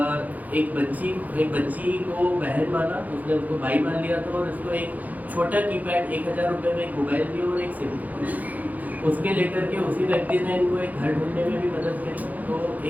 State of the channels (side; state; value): left; late; 0.079 ms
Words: एक बच्ची को बहन माना, उसने उसको भाई मान लिया था और उसको एक छोटा कीपैड 1000 रुपये में एक मोबाइल दिया और एक सिम उसके लेकर के उसी व्यक्ति ने इनको एक घर ढूंढने में भी मदद करी। तो